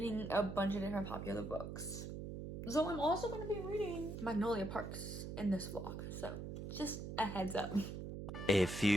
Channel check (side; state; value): right; noise; hum, 6 dB below the sound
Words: a bunch of different popular books. So I'm also going to be reading Magnolia Parks in this vlog. So just a heads up. A